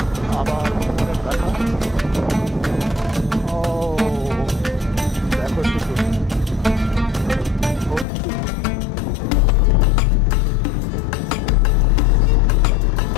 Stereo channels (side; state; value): right; drops out; at 8.1 s